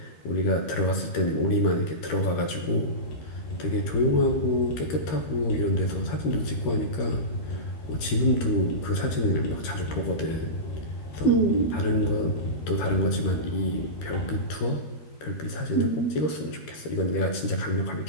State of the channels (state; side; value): late; right; 13 ms